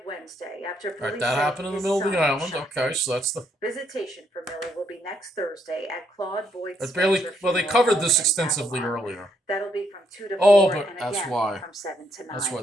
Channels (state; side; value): normal; both; correlation 0.74